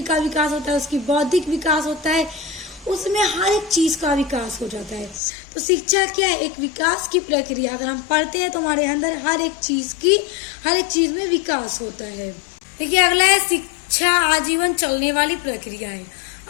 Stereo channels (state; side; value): drops out; right; at 5.2 s